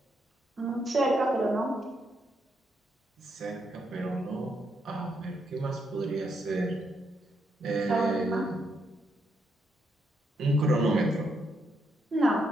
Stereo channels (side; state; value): both; normal; correlation 0.78